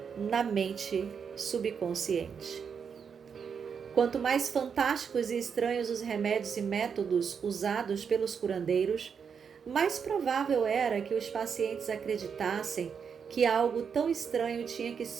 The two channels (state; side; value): quieter; left; 6.6 dB